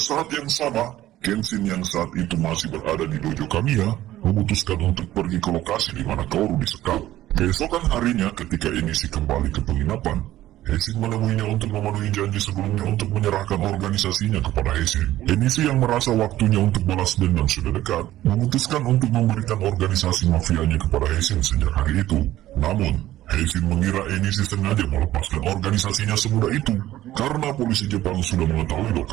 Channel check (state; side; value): quieter; left; 14.4 dB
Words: yang sama, Kenshin yang saat itu masih berada di dojo Kamiya memutuskan untuk pergi ke lokasi di mana Kaoru disekap. Keesokan harinya ketika Enishi kembali ke penginapan, Heisin menemuinya untuk memenuhi janji sebelumnya untuk menyerahkan organisasinya kepada Heisin. Enishi yang merasa waktunya untuk balas dendam sudah dekat, memutuskan untuk memberikan organisasi mafianya kepada Heisin sejak hari itu. Namun, Heisin mengira Enishi sengaja melepaskan organisasinya semudah itu, karena polisi Jepang sudah mengetahui